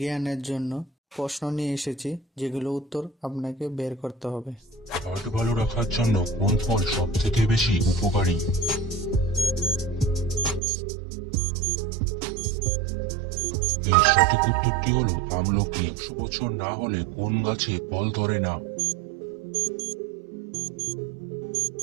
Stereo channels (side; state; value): left; drops out; at 10.6 s